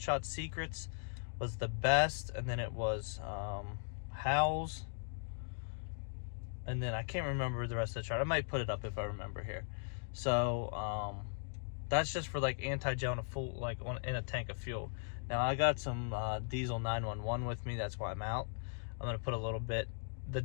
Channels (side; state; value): right; silent; digital silence